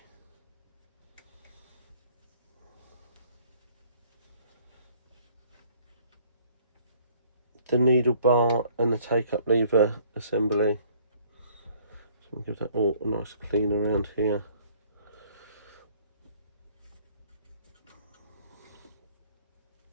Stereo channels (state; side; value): inverted; both; correlation -0.59